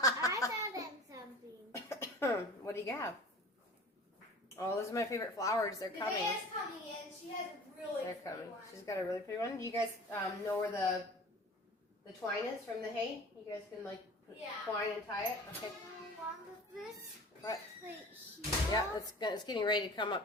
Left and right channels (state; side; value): normal; both; correlation 0.40